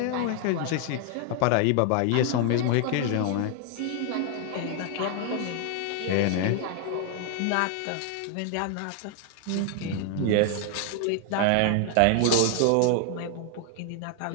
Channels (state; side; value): different; both; correlation 0.00